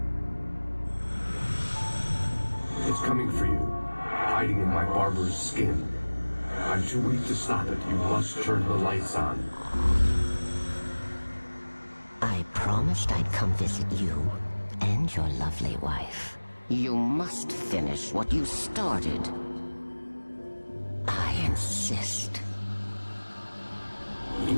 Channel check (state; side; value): inverted; both; correlation -1.00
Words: It's coming for you, hiding in my barber's skin. I'm too weak to stop it. You must turn the lights on. I promised I'd come visit you and your lovely wife. You must finish what you started. I insist. You